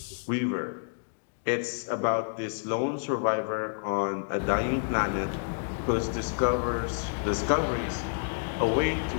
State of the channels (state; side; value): silent; right; digital silence